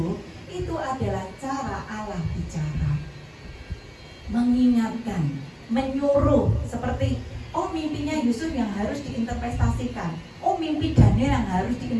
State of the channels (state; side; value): identical; both; correlation 1.00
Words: itu adalah cara Allah bicara, mengingatkan, menyuruh. Seperti mimpinya Yusuf yang harus diinterpretasikan, mimpi Daniel yang harus